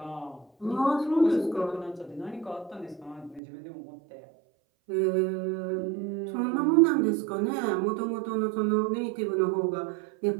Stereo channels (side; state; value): left; drops out; at 3.4 s